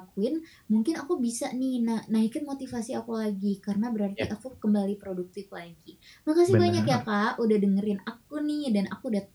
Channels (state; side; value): identical; both; correlation 1.00